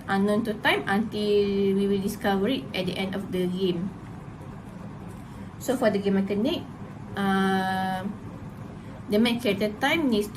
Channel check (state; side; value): identical; both; correlation 1.00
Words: unknown to Time until we will discover it at the end of the game. So for the game mechanic, the main character Time needs